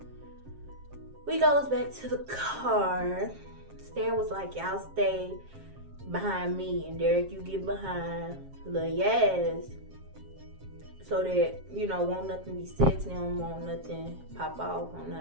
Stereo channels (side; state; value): left; late; 7.5 ms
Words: we goes back to the car. Stan was like, y'all stay behind me, and Derek, you get behind Lil Yaz, so that, you know, won't nothing be said to them, won't nothing pop off, won't